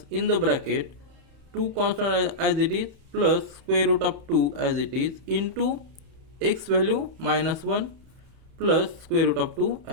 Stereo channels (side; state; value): left; late; 31 ms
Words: in the bracket 2 constant as it is plus square root of 2 as it is into x value minus 1 plus square root of 2